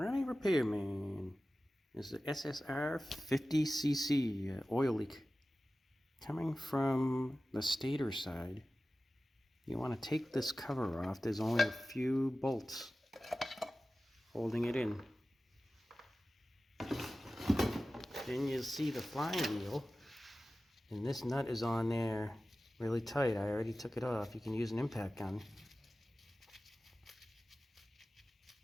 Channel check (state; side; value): normal; both; correlation 0.96